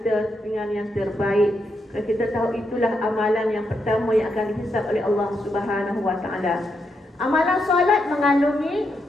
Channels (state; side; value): normal; both; correlation 0.82